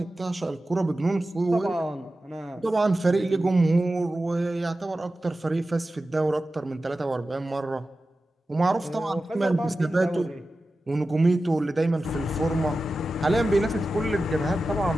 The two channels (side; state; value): both; normal; correlation 0.94